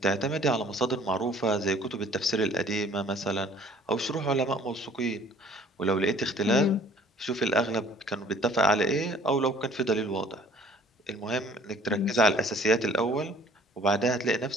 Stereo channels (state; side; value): normal; both; correlation 0.55